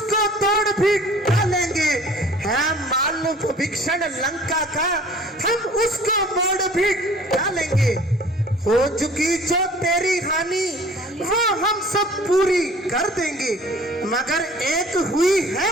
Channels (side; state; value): both; normal; correlation 0.49